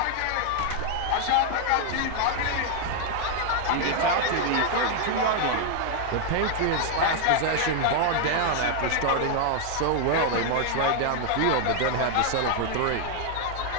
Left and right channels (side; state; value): both; different; correlation 0.00